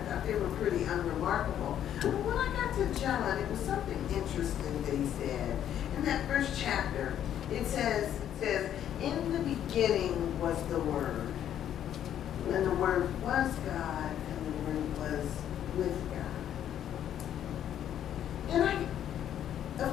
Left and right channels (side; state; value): right; quieter; 10.4 dB